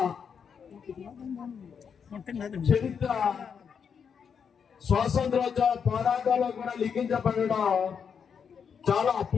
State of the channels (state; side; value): quieter; right; 6.8 dB